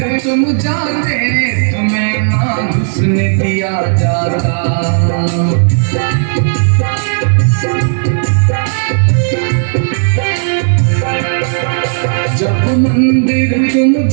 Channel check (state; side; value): silent; left; digital silence